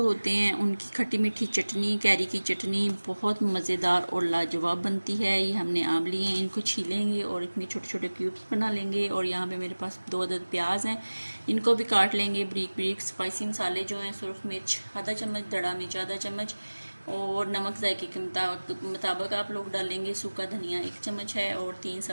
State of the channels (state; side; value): inverted; both; correlation -1.00